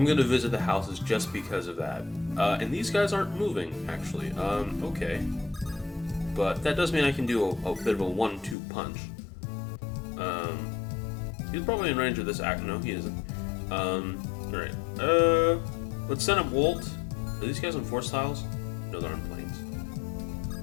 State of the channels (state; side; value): drops out; right; at 8.6 s